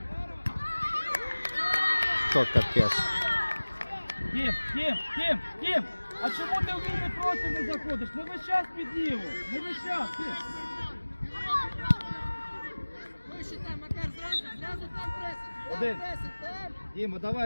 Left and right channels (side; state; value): both; inverted; correlation -1.00